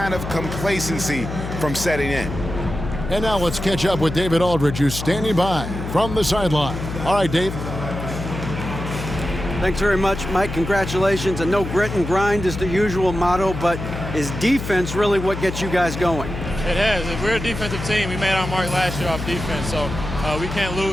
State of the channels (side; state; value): left; noise; hum, 7 dB below the sound